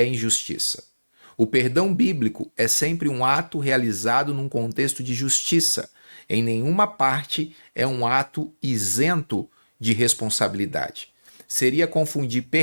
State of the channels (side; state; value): both; inverted; correlation -1.00